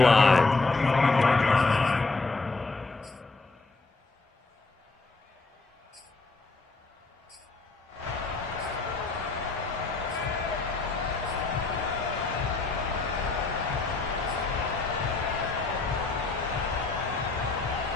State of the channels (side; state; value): right; quieter; 3.7 dB